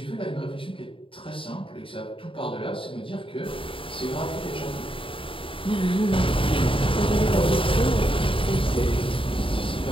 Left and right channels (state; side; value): late; right; 0.25 ms